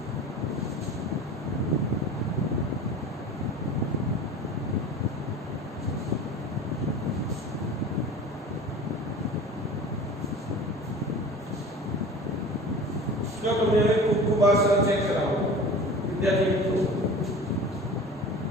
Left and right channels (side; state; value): both; normal; correlation 0.38